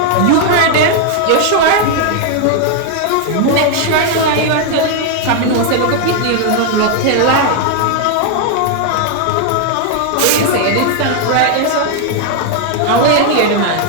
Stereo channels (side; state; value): both; different; correlation 0.00